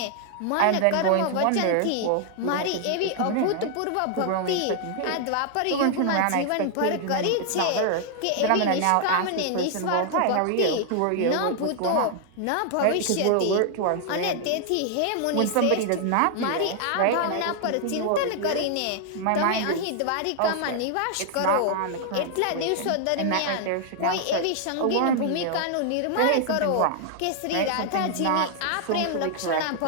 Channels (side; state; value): both; different; correlation 0.00